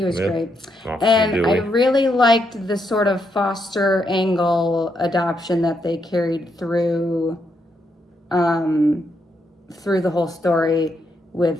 was great. And I really liked the sort of foster angle adoption that they carried through the whole story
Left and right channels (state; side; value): normal; both; correlation 0.79